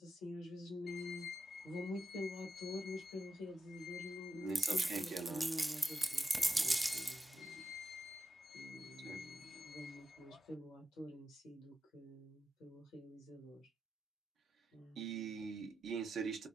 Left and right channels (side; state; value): both; normal; correlation 0.90